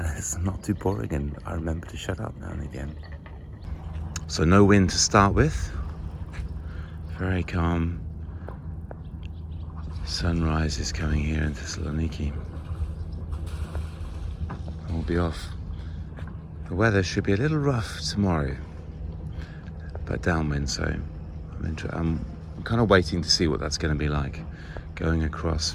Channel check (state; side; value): identical; both; correlation 1.00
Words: it's not too boring, and I remember to shut up now and again. So no wind to start with, very calm. Sunrise is coming here in Thessaloniki. We'll be off. The weather should be a little rough tomorrow, but downwind, so I'm kind of waiting to see what that's going to be like, going across